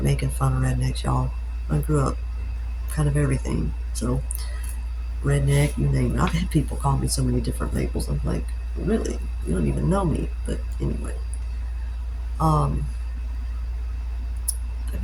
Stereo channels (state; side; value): identical; both; correlation 1.00